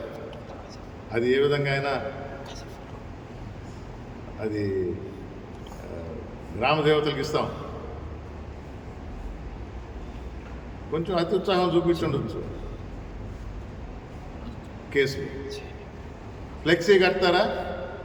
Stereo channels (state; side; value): identical; both; correlation 1.00